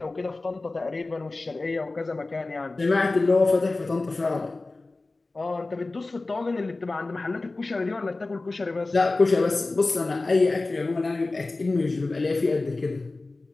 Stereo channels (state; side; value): quieter; right; 3.3 dB